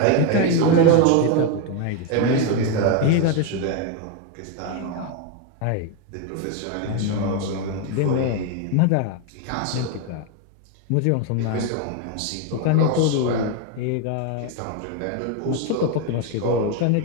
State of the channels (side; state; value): both; different; correlation 0.01